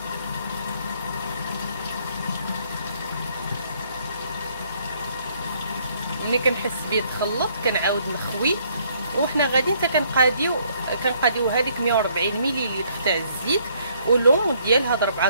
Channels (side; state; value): both; inverted; correlation -0.66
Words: ملي كنحس بيه تخلط كنعاود نخوي، وحنا غادي حتى كنقاديو هذيك 140 مليلتر تاع الزيت ولون ديال هاد